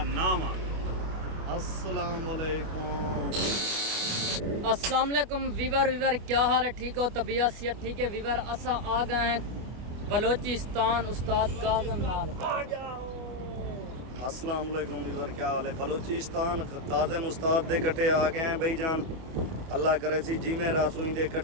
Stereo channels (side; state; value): left; late; 25 ms